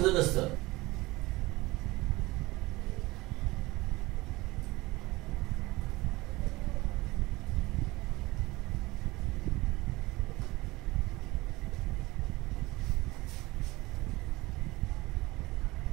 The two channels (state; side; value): quieter; left; 20.9 dB